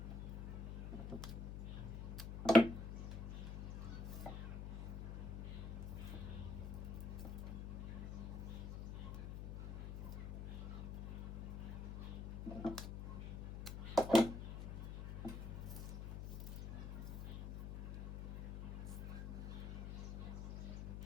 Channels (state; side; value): noise; left; hum, 4 dB below the sound